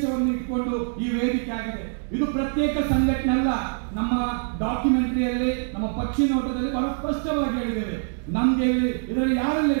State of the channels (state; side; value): silent; left; digital silence